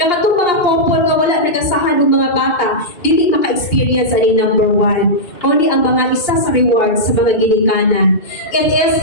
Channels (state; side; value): late; right; 2.8 ms